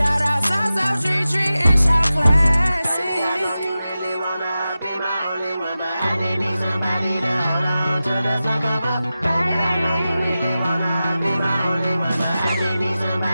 out South Street and shout classic. I know you really wanna be my only one, but I didn't need somebody to hold on to the sucker up. Baby, I know you really wanna be my only one, but I didn't need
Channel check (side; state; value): both; inverted; correlation -0.94